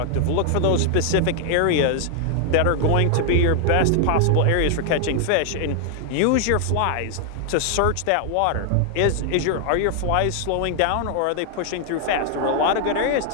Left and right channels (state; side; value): different; both; correlation 0.00